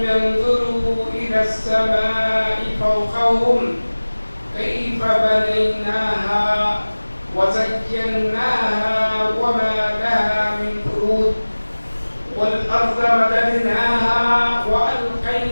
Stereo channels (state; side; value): inverted; both; correlation -1.00